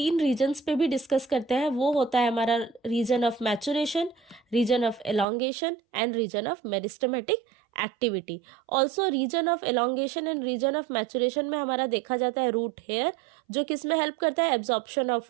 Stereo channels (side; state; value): left; drops out; at 5.2 s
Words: रीजन्स पे भी डिस्कस करते हैं। वो होता है हमारा region of maturation, region of elongation and region of meristematic activity. Also region of elongation and region of maturation में हमारा देखा जाता है रूट हेयर, जो किसमें हेल्प करता है? Absorption